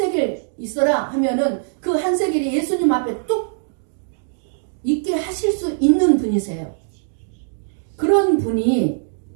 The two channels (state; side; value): silent; left; digital silence